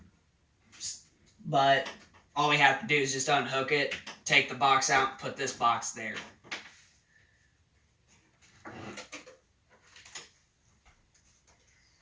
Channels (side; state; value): both; identical; correlation 1.00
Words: But all we have to do is just unhook it, take the box out, and put this box there.